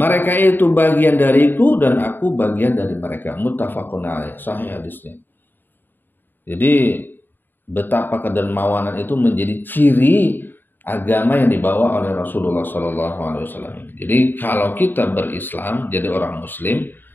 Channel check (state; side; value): late; right; 0.093 ms